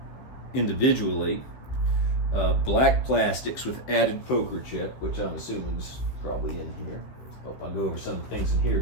individually. Black plastics with added poker chip, which I'm assuming is probably in here. I'll go over some of the things in here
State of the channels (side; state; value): right; late; 16 ms